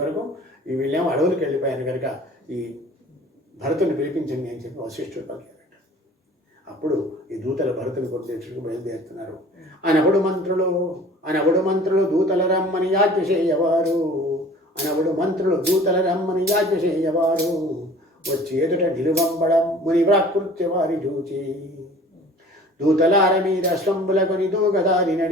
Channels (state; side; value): normal; both; correlation 0.47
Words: ఈ వీళ్ళేమో అడవులకు వెళ్ళిపోయారు కనుక ఈ భరతుని పిలిపించండి అని చెప్పి వశిష్ఠుడు పలికారట. అప్పుడు ఈ దూతలు భరతుని కొట్టేట్టుకు బయలుదేరుతున్నారు. అనబడు మంత్రులు దూతల రమ్మని యాజ్ఞ చేయవారు. దూతల రమ్మని యాజ్ఞ చేయవారు. వచ్చి ఎదుట నిలువంబడం ముని ప్రాకృత్య వారి చూచి. దూతలార మీద స్తంభులకొని దూగదారి